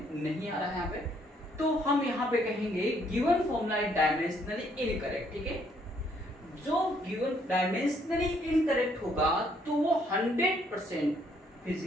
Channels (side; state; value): both; normal; correlation 0.68